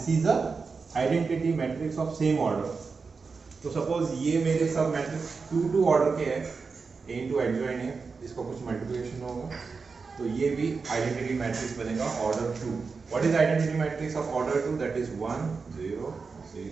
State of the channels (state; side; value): quieter; left; 4.8 dB